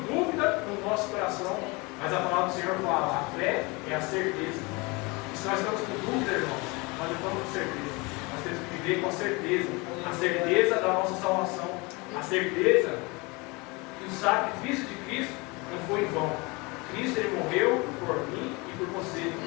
dúvida no nosso coração. Mas a palavra do Senhor fala, a fé é a certeza. E se nós estamos com dúvida, irmãos, nós não estamos com certeza. Nós temos que viver com a certeza. A certeza da nossa salvação. A certeza que o sacrifício de Cristo não foi em vão. Cristo, Ele morreu por mim e por você,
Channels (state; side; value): quieter; right; 26.4 dB